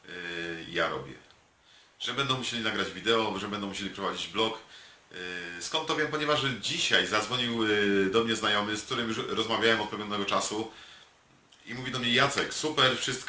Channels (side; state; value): both; identical; correlation 1.00